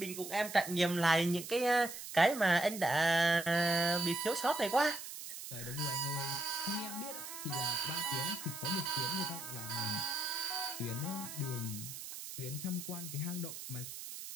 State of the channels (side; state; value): right; noise; hiss, 10 dB below the sound